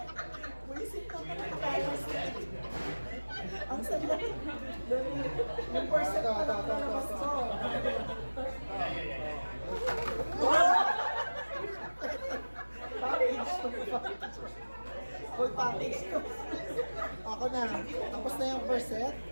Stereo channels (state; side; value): inverted; both; correlation -1.00